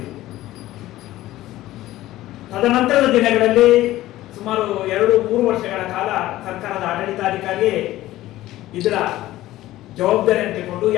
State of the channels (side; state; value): right; quieter; 15.7 dB